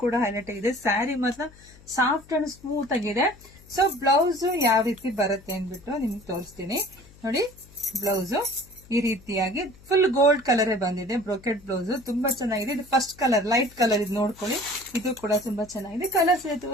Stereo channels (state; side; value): noise; left; hum, 24 dB below the sound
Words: ಕೂಡ ಹೈಲೈಟ್ ಆಗಿದೆ. ಸ್ಯಾರಿ ಮಾತ್ರ ಸಾಫ್ಟ್ ಅಂಡ್ ಸ್ಮೂತ್ ಆಗಿದೆ. ಸೊ ಬ್ಲೌಸ್ ಯಾವ ರೀತಿ ಬರುತ್ತೆ ಅಂದ್ಬಿಟ್ಟು ನಿಮ್ಗೆ ತೋರಿಸ್ತೀನಿ ನೋಡಿ. ಬ್ಲೌಸ್ ಈ ರೀತಿಯಾಗಿ ಫುಲ್ ಗೋಲ್ಡ್ ಕಲರ್ ಬಂದಿದೆ. ಬ್ರೋಕೆಟ್ ಬ್ಲೌಸ್ ತುಂಬಾ ಚೆನ್ನಾಗಿದೆ. ಇದು ಫಸ್ಟ್ ಕಲರ್, ಲೈಟ್ ಕಲರ್, ಇದು ನೋಡ್ಕೊಳ್ಳಿ. ಇದು ಕೂಡ ತುಂಬಾ ಚೆನ್ನಾಗಿದೆ. ಕಲರ್ಸ್